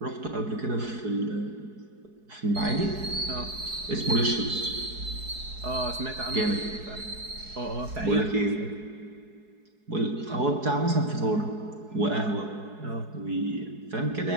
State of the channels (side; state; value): left; late; 4.7 ms